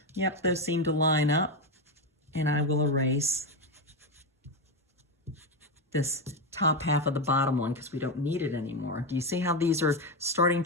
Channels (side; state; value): both; normal; correlation 0.11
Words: Yep, those seem to line up, and I will erase this top half of the bottom one because we don't need it anymore. Do you see how these are starting